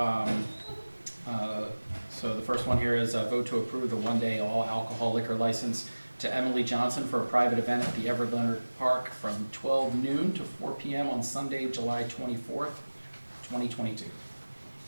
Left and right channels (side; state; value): both; inverted; correlation -1.00